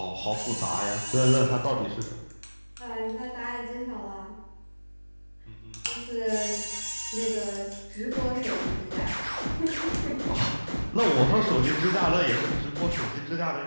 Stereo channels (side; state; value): both; inverted; correlation -1.00